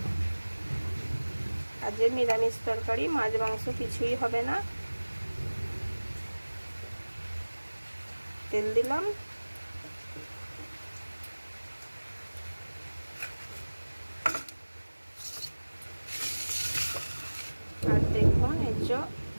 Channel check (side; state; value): both; inverted; correlation -1.00